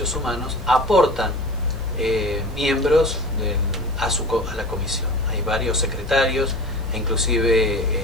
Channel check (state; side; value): noise; right; hiss, 29 dB below the sound